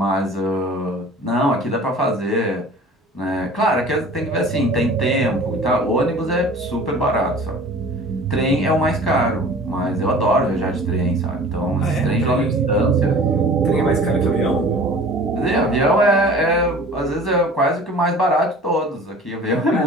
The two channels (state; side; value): normal; both; correlation 0.44